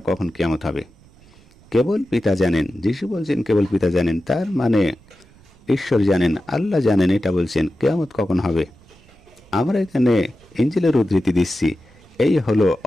কখন কিয়ামত হবে। কেবল পিতা জানেন। যিশু বলছেন কেবল পিতা জানেন, তার মানে ঈশ্বর জানেন, আল্লাহ জানেন। এটা বলছেন কিয়ামত কখন হবে। আমরা এখানে ইনজিলের উদ্ধৃতি দিচ্ছি। এই হলো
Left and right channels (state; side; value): noise; right; rumble, 27 dB below the sound